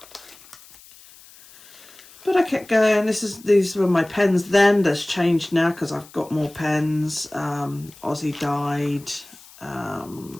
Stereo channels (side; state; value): left; noise; hiss, 23 dB below the sound